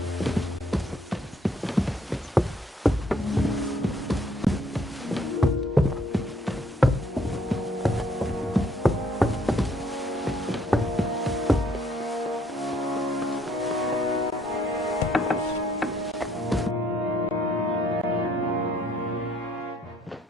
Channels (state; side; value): normal; both; correlation 0.65